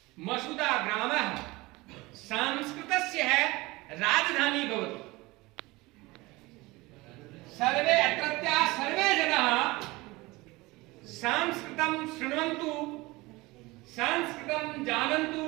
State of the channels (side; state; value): left; quieter; 21.8 dB